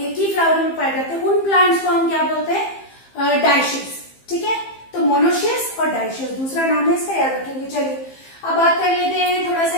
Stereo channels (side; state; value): right; late; 15 ms